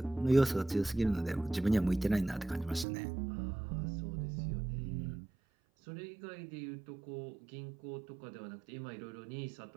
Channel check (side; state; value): left; drops out; at 2.9 s